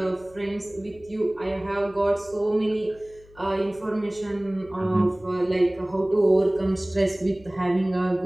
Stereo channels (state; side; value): noise; left; hum, 25 dB below the sound